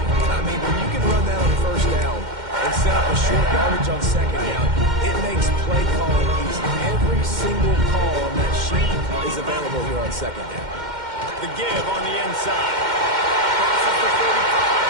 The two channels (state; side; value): late; left; 2.1 ms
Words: I mean, when you can run that on first down and set up a short yardage on second down, it makes play calling easy. Every single call on that sheet is available here on second down. The give on the inside. Crosses the